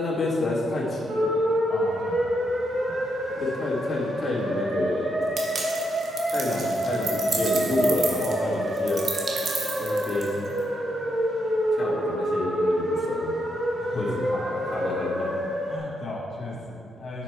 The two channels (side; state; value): both; normal; correlation 0.80